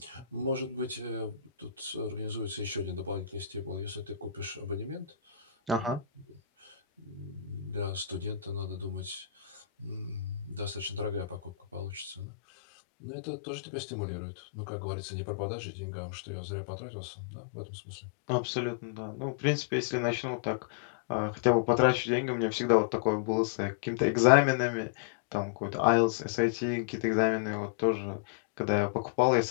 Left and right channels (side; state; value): right; drops out; at 12.2 s